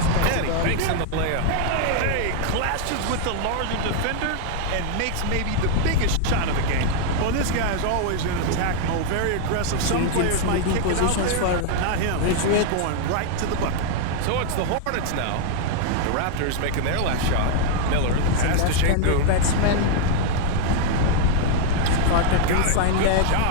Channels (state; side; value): different; both; correlation 0.00